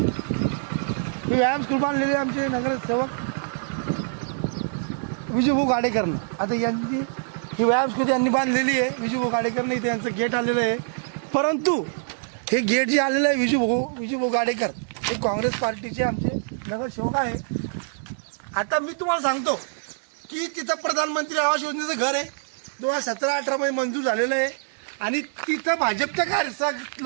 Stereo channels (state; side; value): silent; left; digital silence